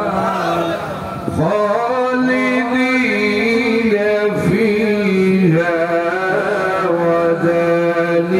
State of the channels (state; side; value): identical; both; correlation 1.00